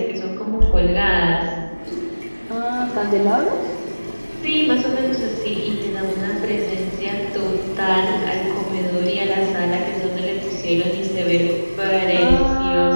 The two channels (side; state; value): both; inverted; correlation -1.00